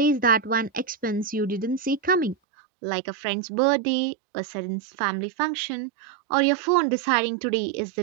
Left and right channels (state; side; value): drops out; left; at 2.4 s